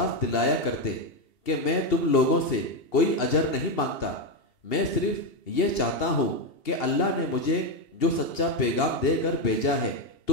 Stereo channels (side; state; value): right; late; 2.8 ms